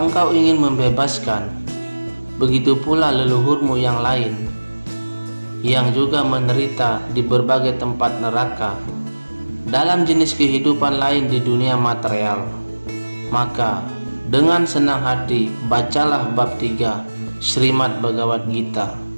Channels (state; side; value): inverted; both; correlation -1.00